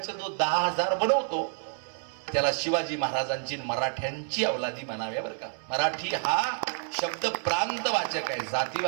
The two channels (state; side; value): silent; left; digital silence